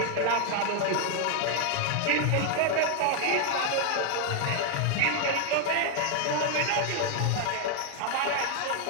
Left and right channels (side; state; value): both; different; correlation 0.00